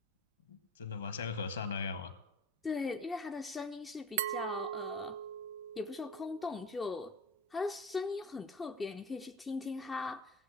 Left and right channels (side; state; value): both; normal; correlation 0.33